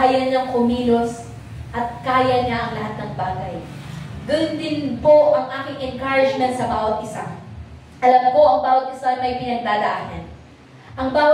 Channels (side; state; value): both; identical; correlation 1.00